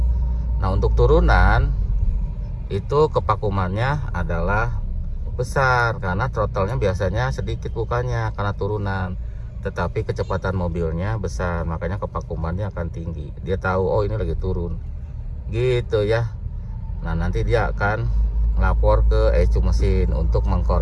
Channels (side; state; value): both; identical; correlation 1.00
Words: Nah, untuk turunan itu kevakumannya adalah besar, karena throttle-nya biasanya sedikit bukanya karena turunan, tetapi kecepatan mobilnya besar, makanya kevakumannya akan tinggi. Dia tahu, oh ini lagi turun gitu ya. Nah, nanti dia akan lapor ke ECU mesin untuk